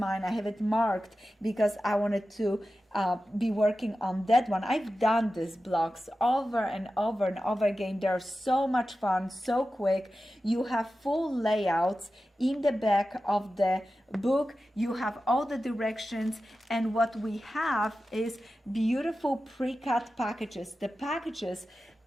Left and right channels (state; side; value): normal; both; correlation 0.93